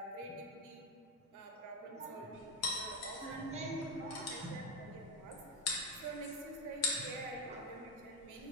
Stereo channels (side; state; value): both; normal; correlation 0.09